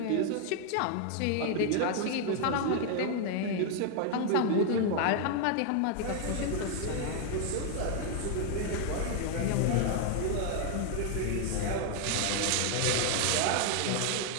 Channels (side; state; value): both; different; correlation 0.00